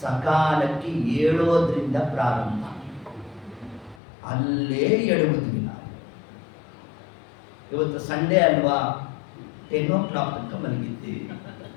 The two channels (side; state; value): right; drops out; at 4.0 s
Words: ಏಳೋದ್ರಿಂದ ಪ್ರಾರಂಭ. ಅಲ್ಲೇ ಎಡುವುದಿಲ್ಲ. ಇವತ್ತು ಸಂಡೇ ಅಲ್ವಾ, 10 o'clock ತನಕ ಮಲಗಿದ್ದೀವಿ.